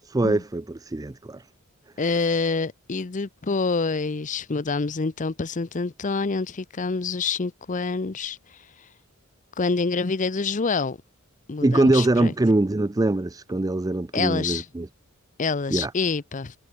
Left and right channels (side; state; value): both; normal; correlation 0.57